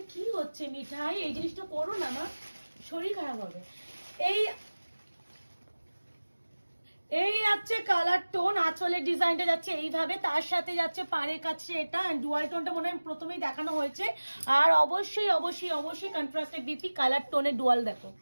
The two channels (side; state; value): both; inverted; correlation -1.00